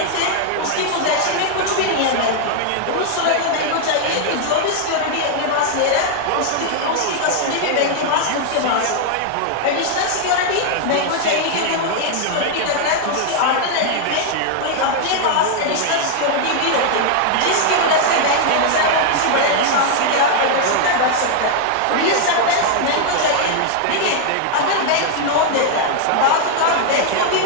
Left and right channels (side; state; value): both; different; correlation 0.00